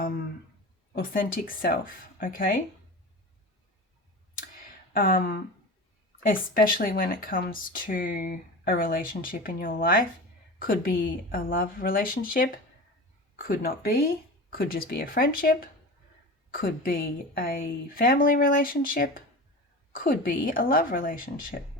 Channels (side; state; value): both; normal; correlation 0.31